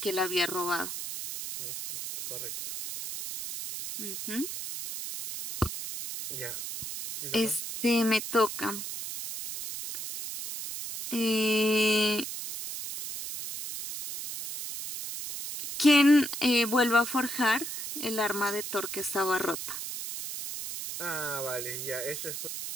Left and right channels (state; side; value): noise; right; hiss, 7 dB below the sound